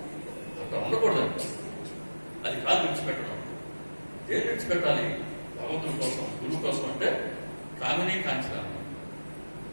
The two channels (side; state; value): both; inverted; correlation -1.00